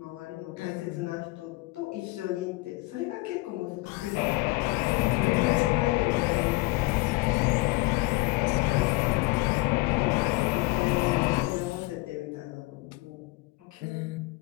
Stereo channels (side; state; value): right; quieter; 22.7 dB